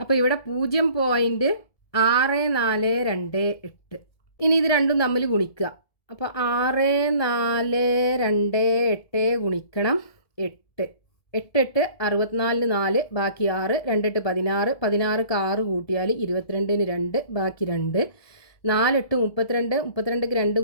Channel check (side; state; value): right; late; 1.7 ms